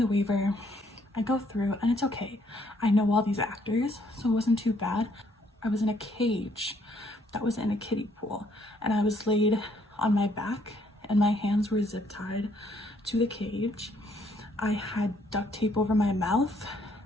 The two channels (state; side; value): normal; both; correlation 0.67